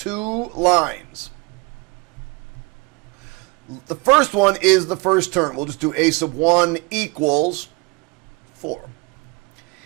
lines. The first one is the first term. We'll just do a sub 1 equals 4.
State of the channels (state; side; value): quieter; left; 26.9 dB